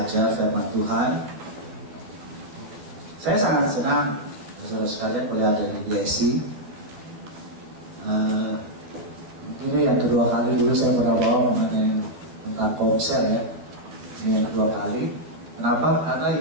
firman Tuhan. Saya sangat senang saudara sekalian boleh ada di BSI. Ini yang kedua kali, dulu saya pernah bawa mengenai tentang komsel ya. Ini yang kedua kali. Kenapa? Karena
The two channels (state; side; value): late; left; 12 ms